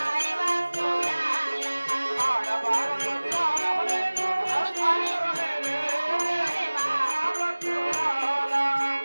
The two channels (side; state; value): both; inverted; correlation -1.00